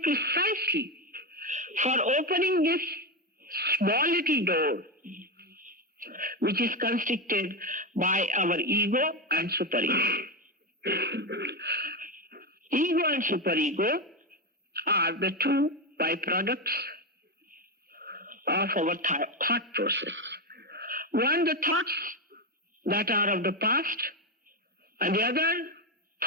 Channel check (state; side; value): normal; both; correlation 0.12